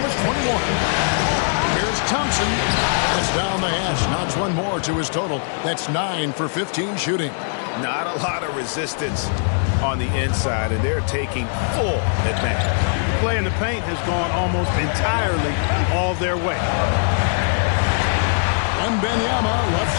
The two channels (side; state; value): right; silent; digital silence